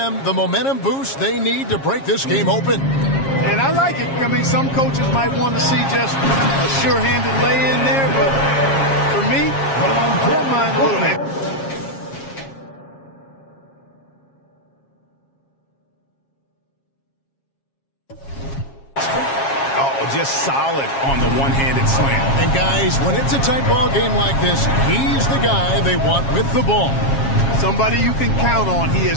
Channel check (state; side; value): late; right; 7.4 ms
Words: the momentum boost they need to break this game open. And I like it. I mean, some coaches might want to see just a sure-handed lay-in there, but for me, I don't mind a little bit. Just solid on the one-handed slam. And guys, when it's a tight ball game like this, he's the guy they want with the ball. Somebody you can count on. He